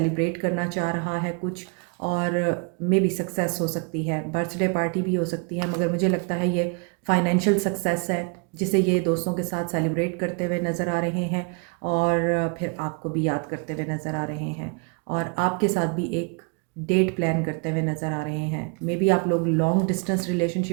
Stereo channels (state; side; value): quieter; left; 35.3 dB